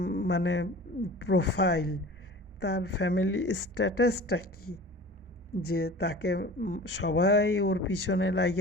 মানে প্রোফাইল, তার ফ্যামিলি স্ট্যাটাসটা কী, যে তাকে সবাই ওর পিছনে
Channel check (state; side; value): normal; both; correlation 0.40